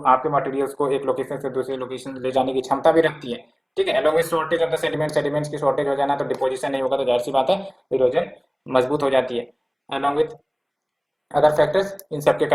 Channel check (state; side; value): identical; both; correlation 1.00